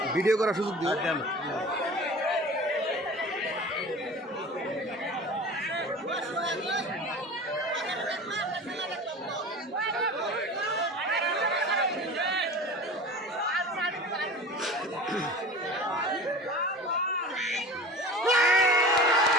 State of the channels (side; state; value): both; normal; correlation 0.37